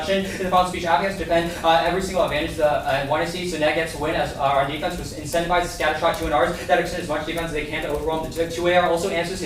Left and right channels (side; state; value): both; identical; correlation 1.00